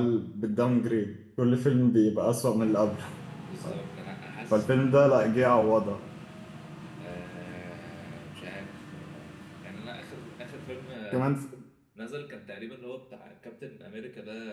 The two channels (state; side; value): identical; both; correlation 1.00